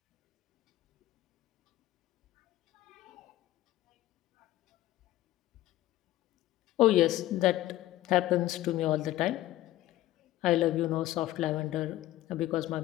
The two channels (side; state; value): right; quieter; 14.9 dB